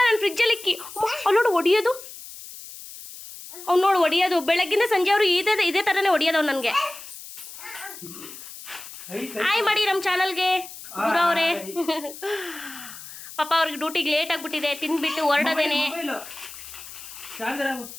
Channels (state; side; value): noise; left; hiss, 14 dB below the sound